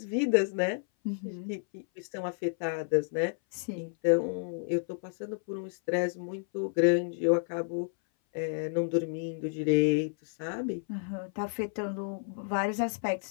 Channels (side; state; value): right; silent; 57 dB below the other